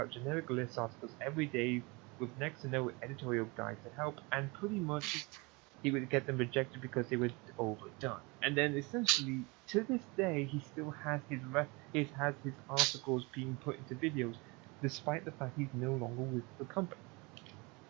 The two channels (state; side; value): quieter; left; 27.0 dB